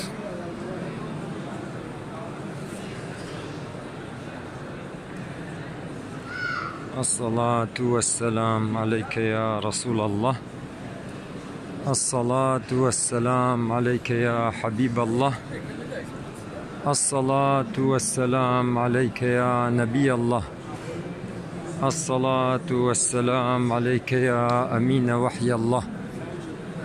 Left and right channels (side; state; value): both; identical; correlation 1.00